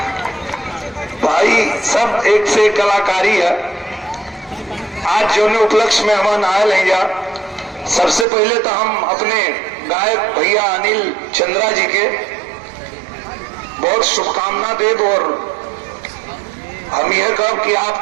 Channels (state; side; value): drops out; left; at 8.2 s